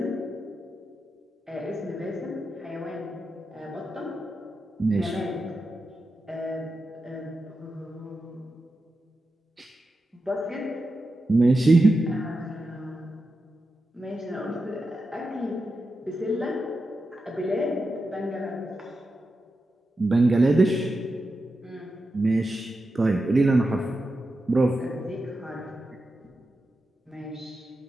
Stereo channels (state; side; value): normal; both; correlation 0.89